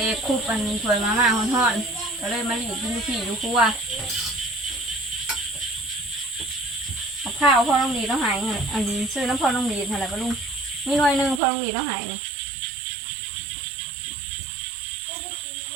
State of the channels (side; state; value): left; drops out; at 11.4 s